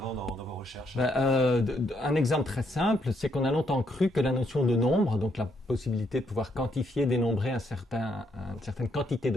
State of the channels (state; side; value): normal; both; correlation 0.74